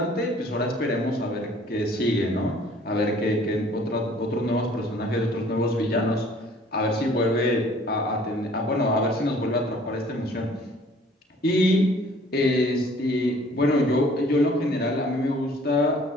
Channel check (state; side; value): normal; both; correlation 0.55